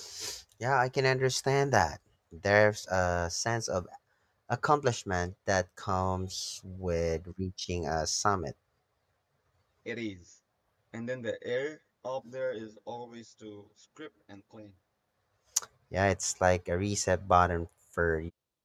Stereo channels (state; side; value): identical; both; correlation 1.00